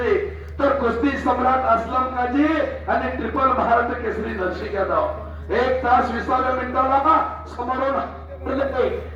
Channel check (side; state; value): both; identical; correlation 1.00